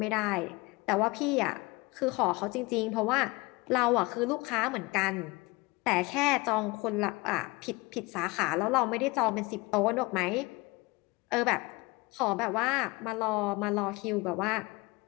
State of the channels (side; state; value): right; quieter; 24.3 dB